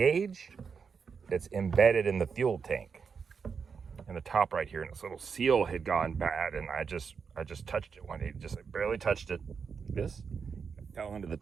that's embedded in the fuel tank. In the top right here, and this little seal had gone bad, and I just touched it one day, just like barely touched it. This fell into the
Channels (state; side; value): quieter; left; 5.9 dB